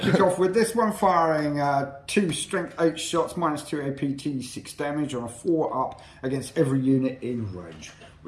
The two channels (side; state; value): both; identical; correlation 1.00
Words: kick off with this one, firing 2 strength 8 shots, -2 APT, 6 damage on a 4 up against every unit in range.